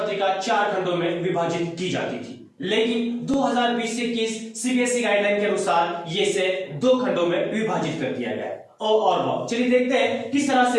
4 खंडों में विभाजित की जाती थी, लेकिन 2020-21 सीबीएसई गाइडलाइन के अनुसार ये इसे 2 खंडों में विभाजित कर दिया गया है। और चलिए देखते हैं किस तरह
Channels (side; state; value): both; identical; correlation 1.00